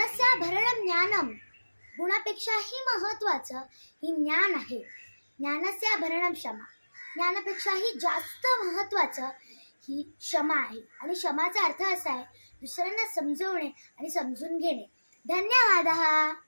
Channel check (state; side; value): inverted; both; correlation -1.00